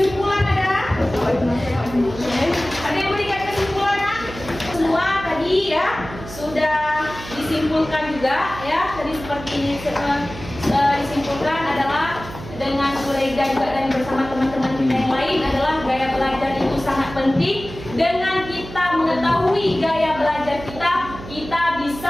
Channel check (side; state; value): right; noise; hum, 13 dB below the sound